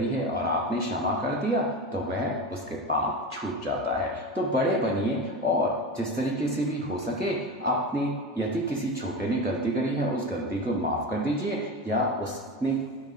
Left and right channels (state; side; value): normal; both; correlation 0.25